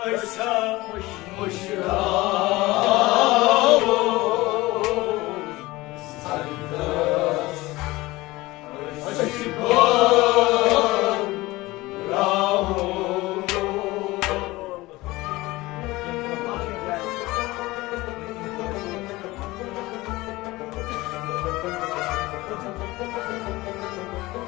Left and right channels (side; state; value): right; quieter; 20.0 dB